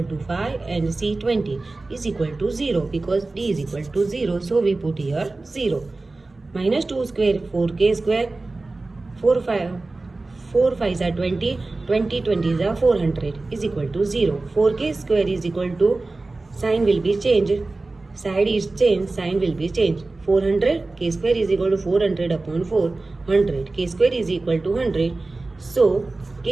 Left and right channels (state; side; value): quieter; left; 3.3 dB